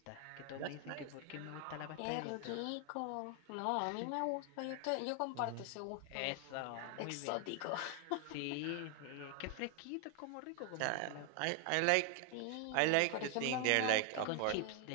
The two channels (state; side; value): different; both; correlation 0.00